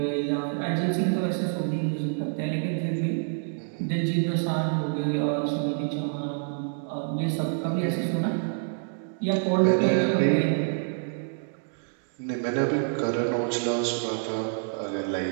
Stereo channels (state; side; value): silent; left; digital silence